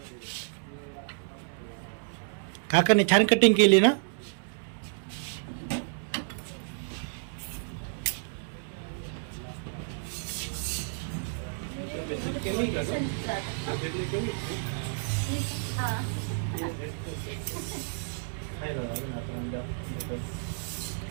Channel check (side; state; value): left; silent; 57 dB below the other